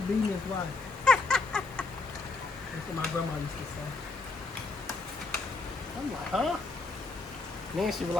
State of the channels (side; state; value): right; quieter; 3.7 dB